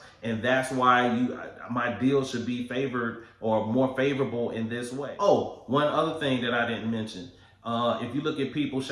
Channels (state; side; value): identical; both; correlation 1.00